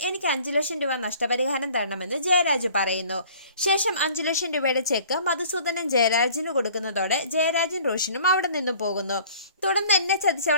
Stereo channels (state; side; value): inverted; both; correlation -0.51